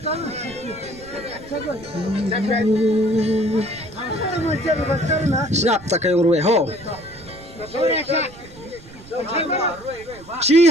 snap ta kayong ruwe ho chi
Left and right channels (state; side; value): noise; right; rumble, 20 dB below the sound